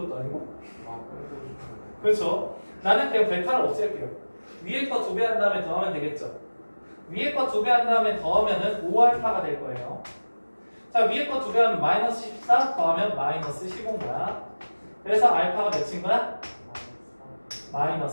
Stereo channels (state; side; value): inverted; both; correlation -1.00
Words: 것도 아니고? 그렇죠. 나는 그냥 베타를 없앨게요. 위에 거 2배 한 다음에 더하면 되겠죠. 위에 거 2배 한 다음에 더하면은 5알파가 될 거예요. 자, 위에 거 2배 하면 마이너스 14 더하면 마이너스 15인 거야. 그래서 알파가 몇인 거야?